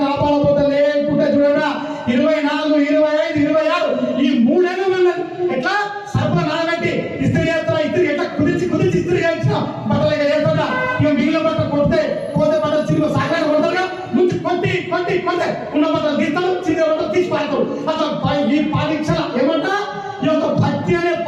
కాపాడబోతే లేకుంటే చూడరా 24, 25, 26 ఈ 3 ఏళ్ళు ఎట్లా సర్ప నానబెట్టి ఇస్త్రీ చేస్తారా? ఇస్త్రీ ఎట్లా కుదిర్చి ఇస్త్రీ చేయించిన బట్టలుగా చేస్తాడా? ఇక మిగిలిన బట్ట కొడితే పోతే బట్టలు చిన్న సాగర కొడతారుగా. ముందు కొట్టి ఉన్న బట్టలు తీస్తారు, చిన్న బట్టలు తీసి పాడతారు. అసలు ఈ పరీక్ష ఏమంటా? ఈ యొక్క భక్తి అనే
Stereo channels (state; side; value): identical; both; correlation 1.00